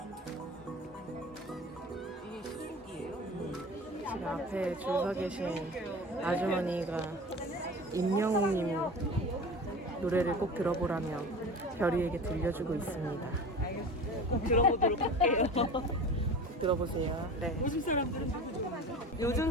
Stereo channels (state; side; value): normal; both; correlation 0.35